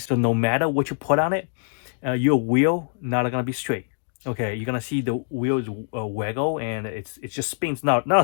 that no matter what you put on it, your wheel not gonna be straight. Okay, you're gonna see the wheels waggle, and it just spins,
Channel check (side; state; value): right; silent; 63 dB below the other